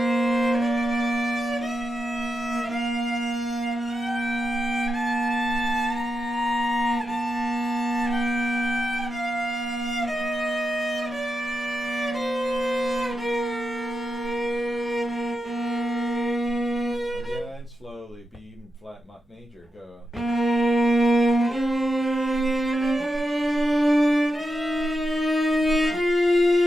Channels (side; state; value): both; normal; correlation 0.87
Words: Again, slowly. B even flat major. Go.